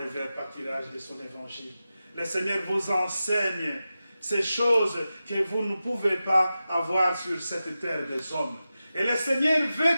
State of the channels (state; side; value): inverted; both; correlation -0.93